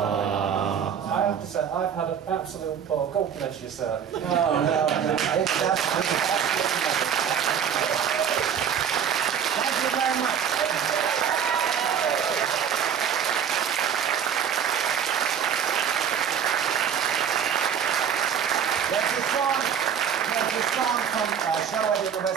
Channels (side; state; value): left; quieter; 8.1 dB